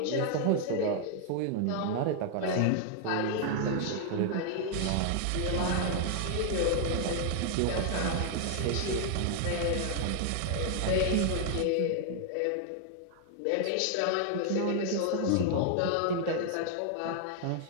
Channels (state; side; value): different; both; correlation 0.00